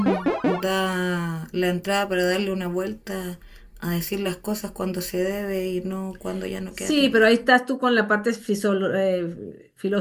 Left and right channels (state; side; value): identical; both; correlation 1.00